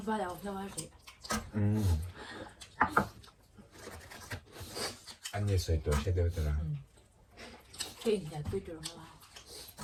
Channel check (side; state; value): both; identical; correlation 1.00